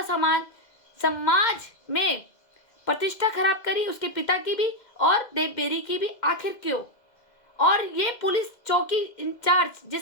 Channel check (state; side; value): late; right; 2.0 ms